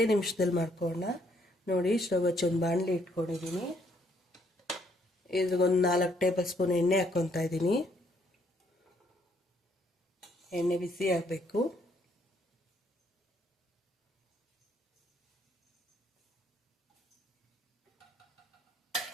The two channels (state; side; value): normal; both; correlation 0.69